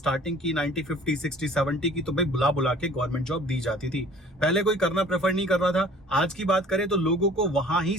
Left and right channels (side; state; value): both; normal; correlation 0.50